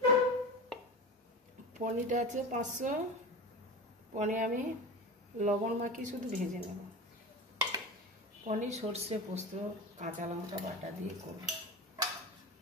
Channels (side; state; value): both; normal; correlation 0.27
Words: পনিরটা আছে 500। পনির আমি লবণ মাখিয়ে শুধু ভেজে নেব। পনির সর্ষে পোস্ত কাঁচা লঙ্কা বাটা দিয়ে করব।